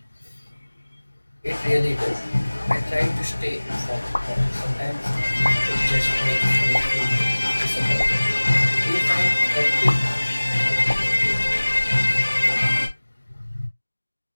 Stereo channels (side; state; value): both; inverted; correlation -1.00